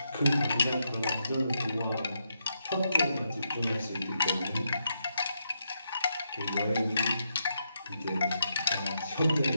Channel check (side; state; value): both; inverted; correlation -0.81